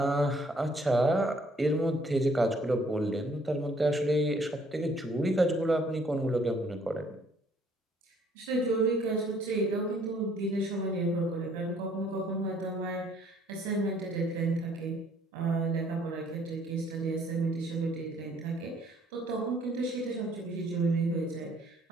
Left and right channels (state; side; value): normal; both; correlation 0.62